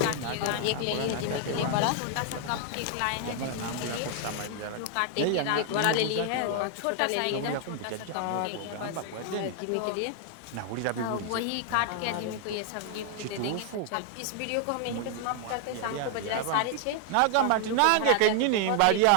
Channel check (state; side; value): different; both; correlation 0.00